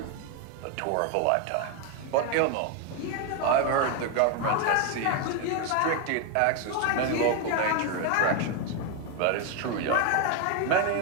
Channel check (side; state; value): both; different; correlation 0.01